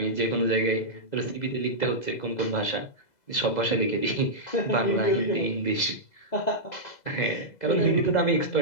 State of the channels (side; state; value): right; late; 2.0 ms